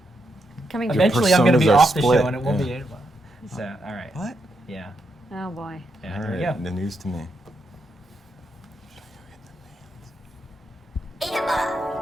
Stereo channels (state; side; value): normal; both; correlation 0.81